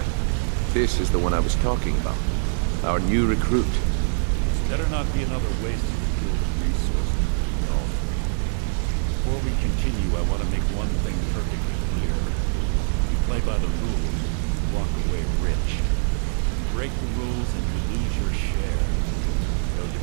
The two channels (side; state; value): left; silent; digital silence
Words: this is the one I was talking about. Our new recruit. This better not be another waste of the Guild's resources, Brynjolf. Before we continue, I want to make one thing perfectly clear. If you play by the rules, you walk away rich. You break the rules and you lose your share. No